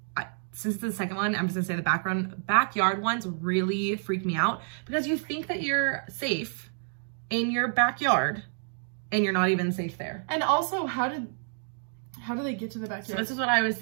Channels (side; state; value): left; silent; digital silence